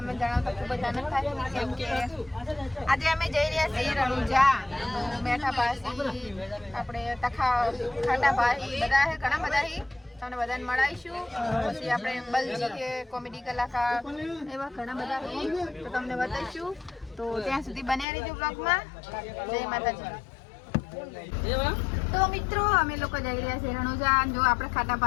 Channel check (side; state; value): right; drops out; at 18.1 s